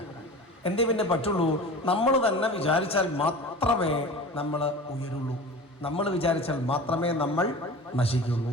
എന്തേ പിന്നെ പറ്റുള്ളൂ? നമ്മൾ തന്നെ വിചാരിച്ചാൽ മാത്രമേ നമ്മൾ ഉയരുള്ളൂ. നമ്മൾ വിചാരിച്ചാൽ മാത്രമേ നമ്മൾ നശിക്കുള്ളൂ.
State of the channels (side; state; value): both; normal; correlation 0.36